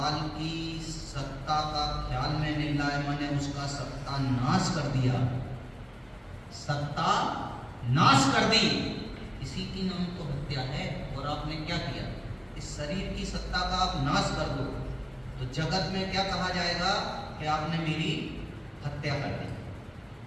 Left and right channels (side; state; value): both; identical; correlation 1.00